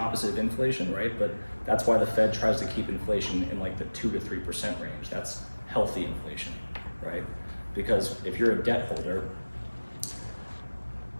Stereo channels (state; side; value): inverted; both; correlation -1.00